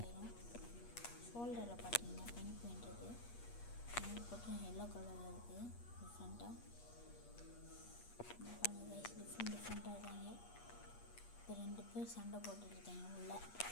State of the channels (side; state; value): right; late; 8.4 ms